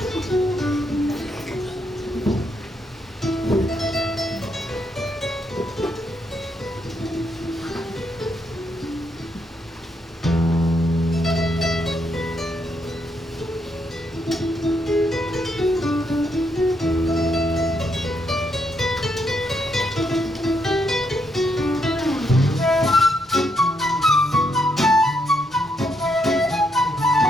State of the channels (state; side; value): normal; both; correlation 0.77